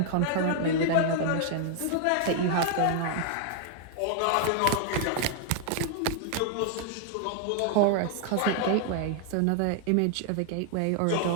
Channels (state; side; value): different; both; correlation 0.00